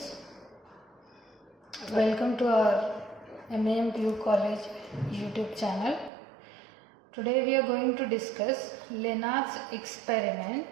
welcome to our MAMPU College YouTube channel. Today we are going to discuss Lenard's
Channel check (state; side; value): drops out; left; at 6.1 s